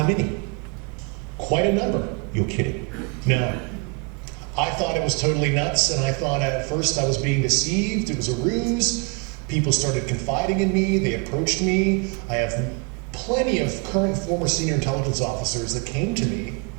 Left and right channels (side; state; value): left; quieter; 31.4 dB